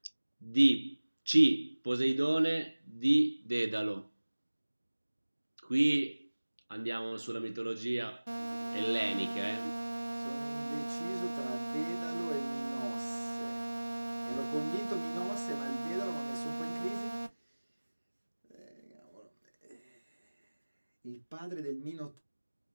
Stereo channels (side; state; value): both; inverted; correlation -1.00